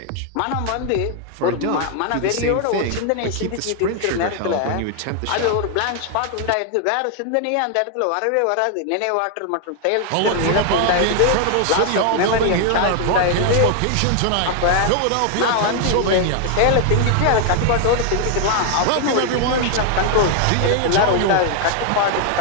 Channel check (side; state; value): both; different; correlation 0.00